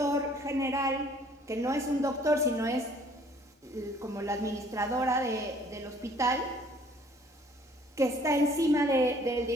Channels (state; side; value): normal; both; correlation 0.57